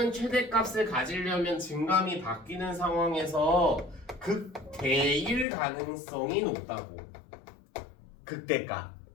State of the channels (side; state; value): right; drops out; at 5.5 s